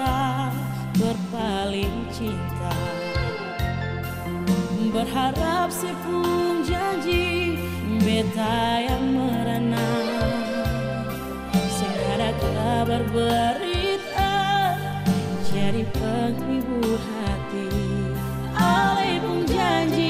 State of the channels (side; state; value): both; identical; correlation 1.00